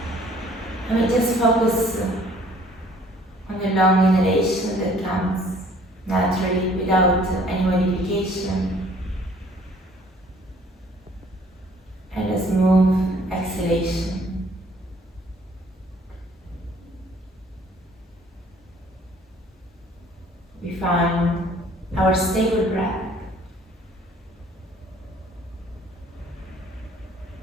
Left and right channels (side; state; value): both; normal; correlation 0.57